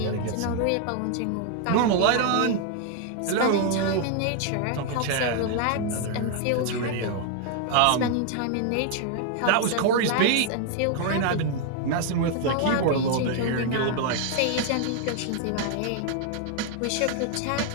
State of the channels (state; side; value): different; both; correlation 0.00